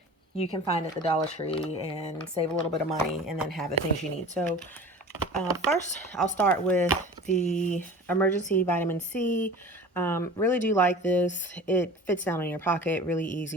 you can find at the Dollar Tree and save a little bit of money and then have the things you need. So first, I'll start with the emergency vitamin C. Really do like this. It fits down in your pocket, really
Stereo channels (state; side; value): normal; both; correlation 0.39